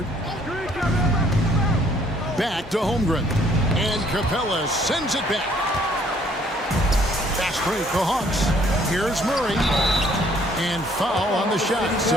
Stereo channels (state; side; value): normal; both; correlation 0.62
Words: Back to Holmgren. And Capella sends it back. Fast break, the Hawks. Here's Murray. And foul on the shot,